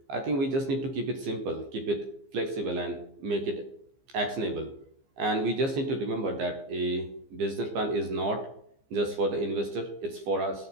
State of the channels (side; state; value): left; late; 15 ms